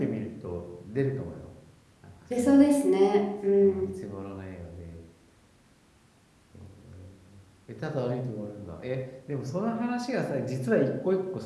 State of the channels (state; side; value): identical; both; correlation 1.00